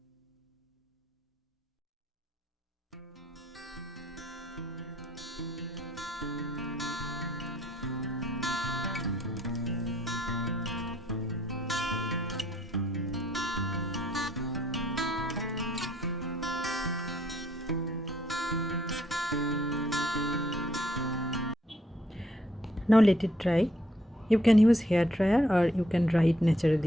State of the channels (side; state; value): both; normal; correlation 0.69